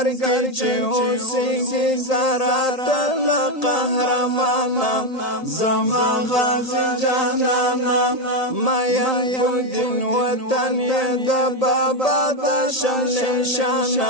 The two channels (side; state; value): right; late; 1.8 ms